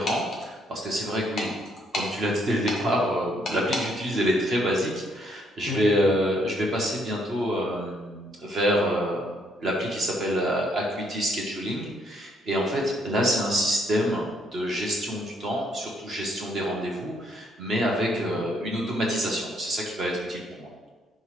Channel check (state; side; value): normal; both; correlation 0.70